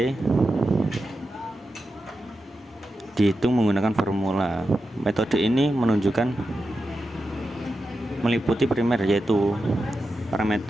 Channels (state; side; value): normal; both; correlation 0.90